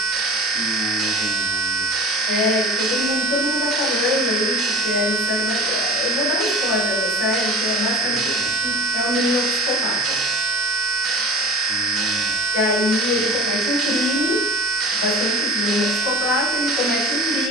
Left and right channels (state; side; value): normal; both; correlation 0.37